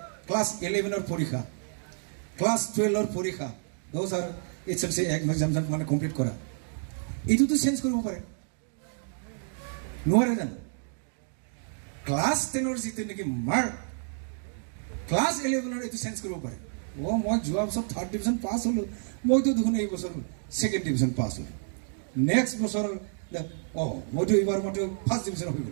ক্লাস 11 পৰীক্ষা ক্লাস 12 পৰীক্ষা those are HSLC exam মানে কমপ্লিট কৰা এইটো চেঞ্জ কৰিব পাৰে নোৱাৰে জানো ক্লাস 10 যিটো নেকি মাৰ্ক ক্লাস 11 এইটো চেঞ্জ কৰিব পাৰে মই যোৱা বছৰ 3rd ডিভিজন পাছ হলো মইতো দেখোন এই বছৰ 2nd ডিভিজন পাছ হলো নেক্সট বছৰ মইতো এইবাৰ মইতো 1st ডিভিজন হৈ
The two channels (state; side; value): silent; left; 58 dB below the other